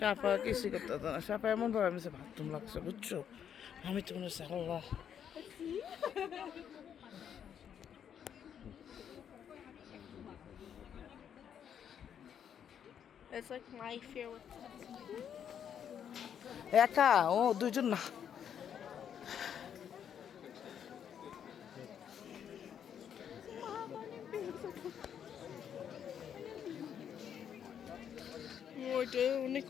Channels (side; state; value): right; quieter; 8.6 dB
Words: কিছুই করতে হতো না। সাফা এমন ভাবে আমি বাথরুম লাগছে, বুঝছো? আমি তো মনে হচ্ছে আল্লাহ। It's like my fear with একা ও, দুইজন না। ওইটা অনেক